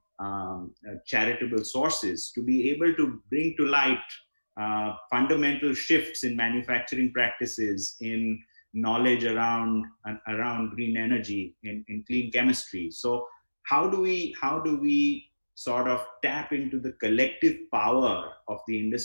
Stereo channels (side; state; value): both; inverted; correlation -1.00